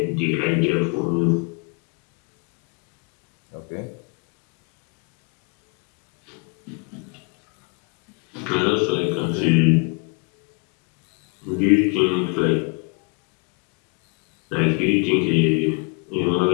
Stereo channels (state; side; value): quieter; right; 33.3 dB